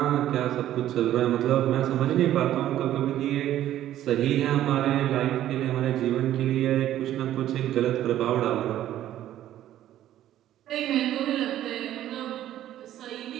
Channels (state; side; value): quieter; left; 12.5 dB